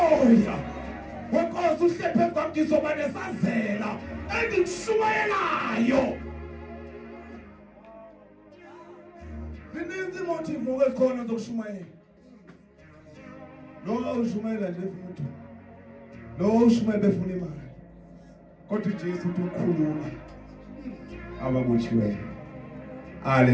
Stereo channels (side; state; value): both; identical; correlation 1.00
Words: Wenkosi uhlephe kwam ngizoba nesazela engikushumayelayo. Zininzi motive ezikhona zokushumayela. Lo ushumayela nje umuntu. Lo ushumayela befuna imali. Kodwa uJesu uthi ukhulula ababotshiweyo.